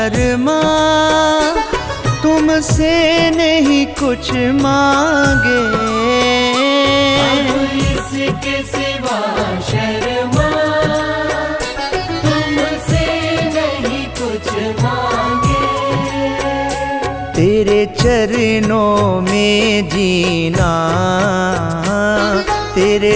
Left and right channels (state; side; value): identical; both; correlation 1.00